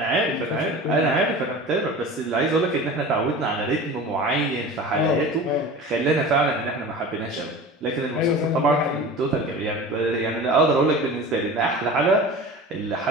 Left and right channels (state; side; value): normal; both; correlation 0.36